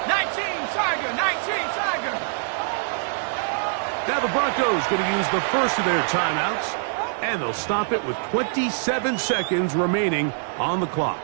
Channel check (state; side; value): silent; left; digital silence